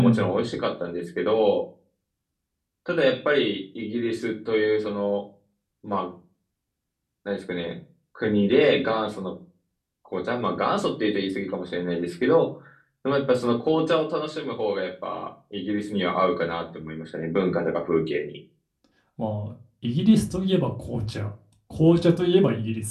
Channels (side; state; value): both; identical; correlation 1.00